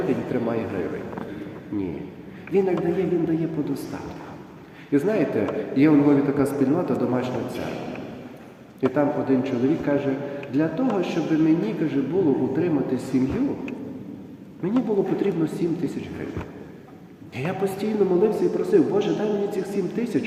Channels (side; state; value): both; identical; correlation 1.00